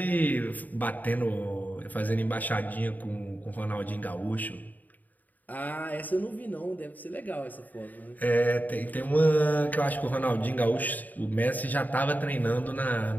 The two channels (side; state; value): right; late; 0.082 ms